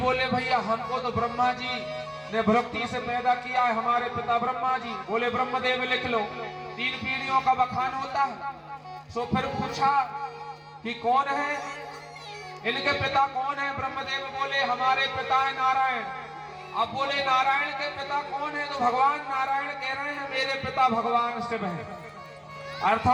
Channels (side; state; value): both; identical; correlation 1.00